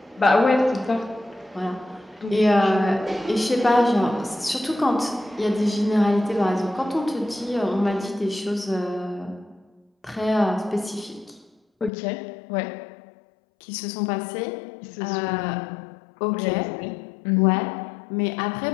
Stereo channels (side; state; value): right; drops out; at 11.9 s